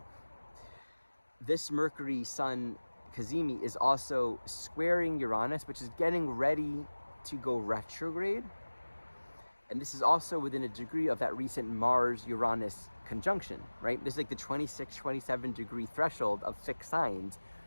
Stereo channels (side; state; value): both; inverted; correlation -1.00